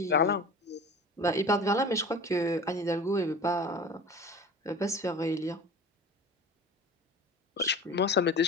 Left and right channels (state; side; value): normal; both; correlation 0.37